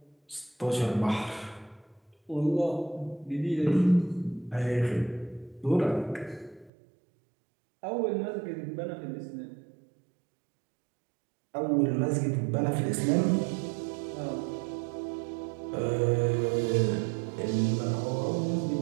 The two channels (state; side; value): drops out; left; at 6.7 s